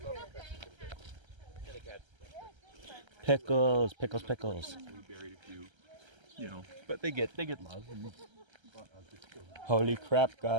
Pickles, pickles, pickles. We buried a few, you know, but they get love. And, Holy crap,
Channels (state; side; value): late; left; 1.3 ms